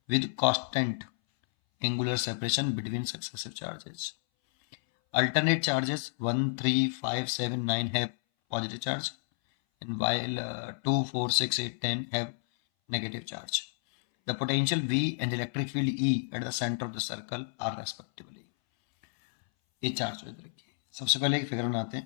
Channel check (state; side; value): silent; right; 57 dB below the other